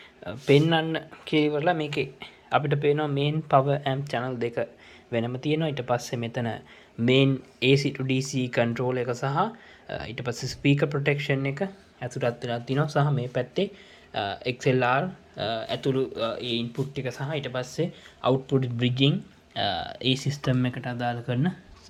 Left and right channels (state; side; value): identical; both; correlation 1.00